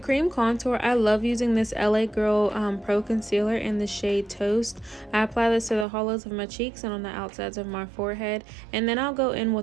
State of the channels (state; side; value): drops out; left; at 5.9 s